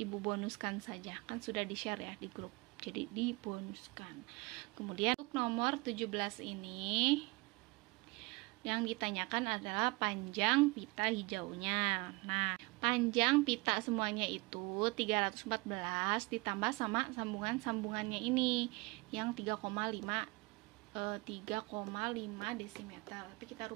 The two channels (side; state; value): left; quieter; 25.6 dB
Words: ibu bonuskan saja, kan sudah di share ya di grup, jadi dibonuskan. Kemudian untuk nomor 17 ini yang ditanyakan adalah panjang pita hijaunya. Nah, panjang pita semuanya itu 314 ditambah sama sambungan-sambungannya ini yang 3,5 desimeter. Tapi kita